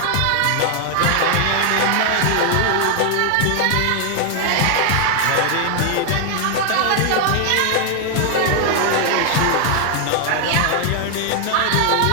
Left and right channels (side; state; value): both; different; correlation 0.00